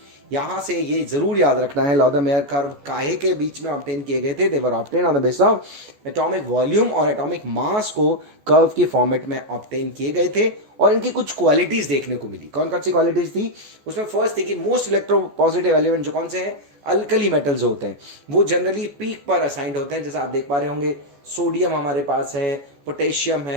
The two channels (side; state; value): left; late; 14 ms